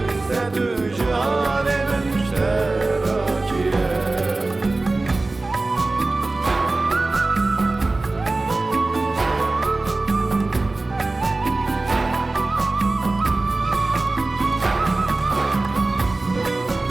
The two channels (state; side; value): quieter; left; 3.2 dB